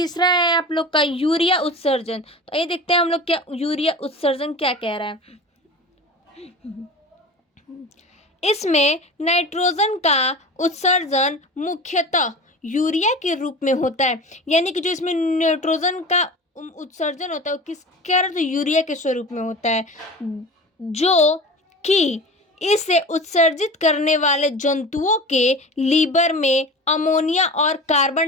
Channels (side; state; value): both; normal; correlation 0.34